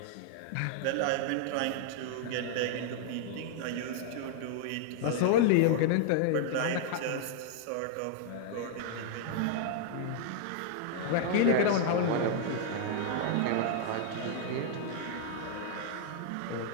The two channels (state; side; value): different; both; correlation -0.01